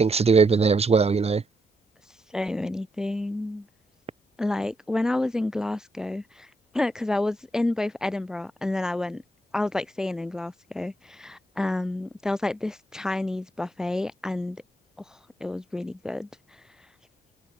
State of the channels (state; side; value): normal; both; correlation 0.80